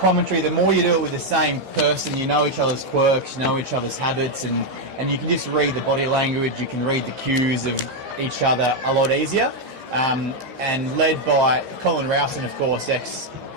The more you do it with the same person, you know each other's quirks, you know each other's habits, and you can just read the body language, you can read the cues of each other a lot easier. And led by Colin Rowson, of course,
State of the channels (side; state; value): left; late; 15 ms